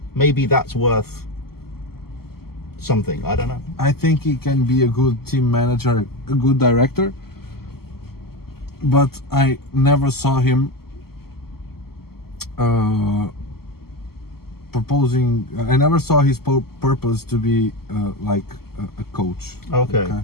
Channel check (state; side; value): late; right; 0.95 ms